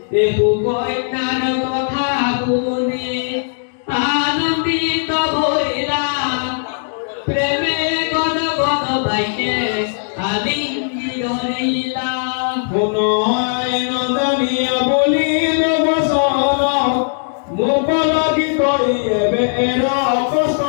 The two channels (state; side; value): silent; right; digital silence